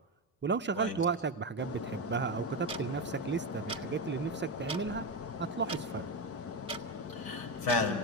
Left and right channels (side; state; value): both; normal; correlation 0.13